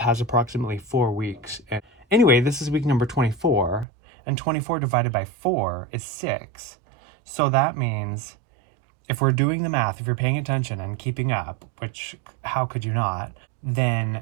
approximately 4 weeks. And anyway, this is week number 24, and 24 divided by 4 is 6. So that means if we're doing the math, if you're paying attention and keeping up, which how could you not,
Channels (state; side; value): drops out; left; at 3.9 s